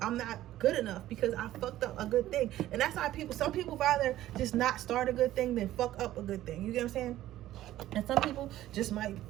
good enough because I fucked up a good thing. And that's why some people rather just not start a good thing than fuck up a good thing. You get what I'm saying? And some people just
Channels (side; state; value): left; quieter; 14.1 dB